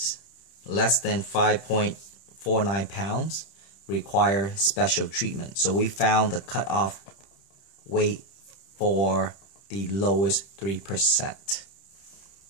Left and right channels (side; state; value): right; late; 31 ms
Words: less than 5.49 pounds require special treatment. So we found the cutoff weight for the lowest 3%.